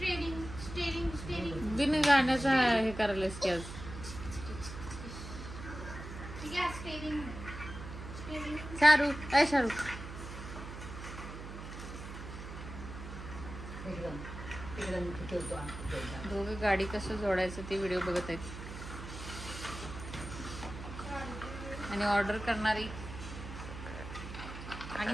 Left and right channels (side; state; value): right; noise; hum, 10 dB below the sound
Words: स्टेरिंग बिन गाण्याचा हे करायलास की आज. ठीक आहे स्टेरिंग. शाहरुख ए शाहरुख एकदम एकदम ठेवतो आमचं. दोघे गाडी कसं जोडायचं ते व्हिडिओ बघत आहेत. आणि ऑर्डर करणारी